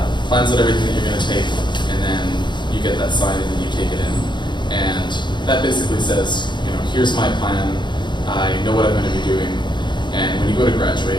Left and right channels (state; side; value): late; right; 0.22 ms